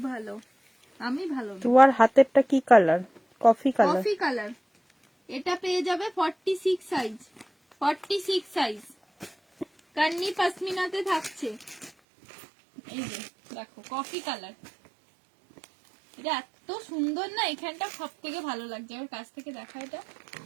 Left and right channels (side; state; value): left; drops out; at 11.9 s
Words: ভালো, আমি ভালো না। তোমার হাতেরটা কি colour? Coffee colour. Coffee colour, এটা পেয়ে যাবে 46 সাইজ, 46 সাইজ, কান্নি পশমিনাতে থাকছে। এই যে দেখো কফি কালার, এটা এত সুন্দর না, এখানটা সব থেকে ভালো লাগছে। আমার কাছ থেকে দেখা, এটা